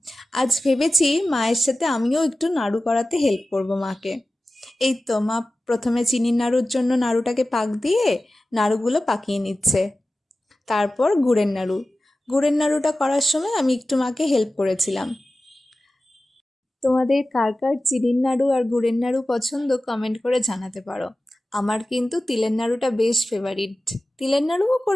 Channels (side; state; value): both; normal; correlation 0.95